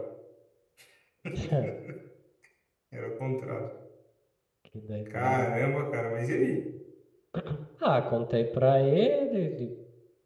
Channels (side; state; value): both; identical; correlation 1.00